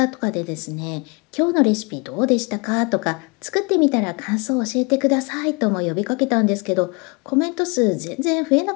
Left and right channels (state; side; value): quieter; right; 31.3 dB